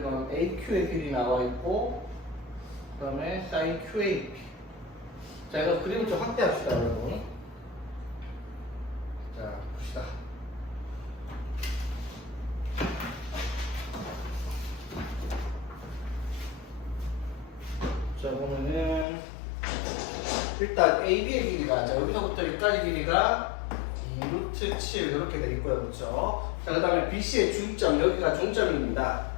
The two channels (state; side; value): drops out; right; at 19.1 s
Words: AQ의 길이 나와 있고, 그 다음에 sin QAP. 자, 이거 그림을 좀 확대합시다, 여러분. 자, 봅시다. 자, 보면은 일단 AB의 길이가, 자, 여기서부터 여기까지 길이가 2루트 7 이렇게 돼 있고요, 그렇죠? 자, 그 다음에 BC의 중점, 여기가 중점입니다.